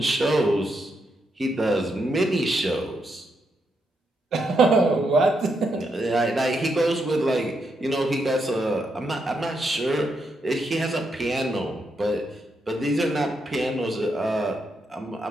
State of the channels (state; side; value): normal; both; correlation 0.81